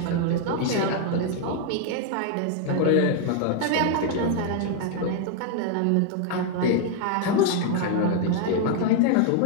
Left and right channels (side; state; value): both; different; correlation 0.00